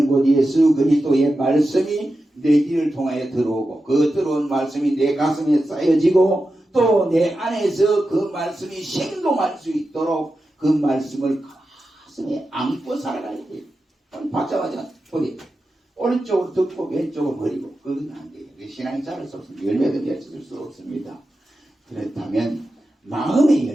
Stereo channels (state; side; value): normal; both; correlation 0.91